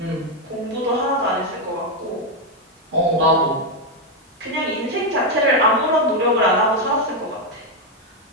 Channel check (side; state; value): both; normal; correlation 0.04